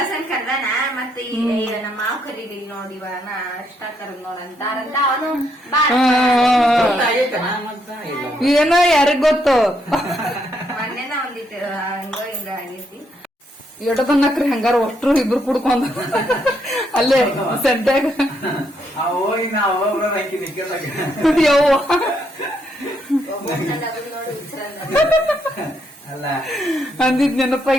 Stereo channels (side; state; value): both; normal; correlation 0.75